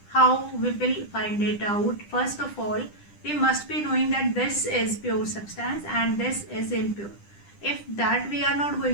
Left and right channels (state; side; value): late; right; 10 ms